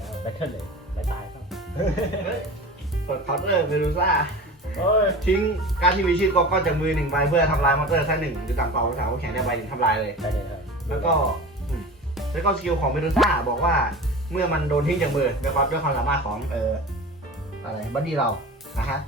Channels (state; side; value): normal; both; correlation 0.34